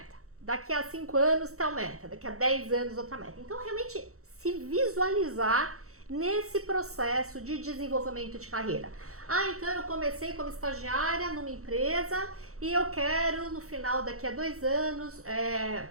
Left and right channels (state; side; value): late; left; 0.64 ms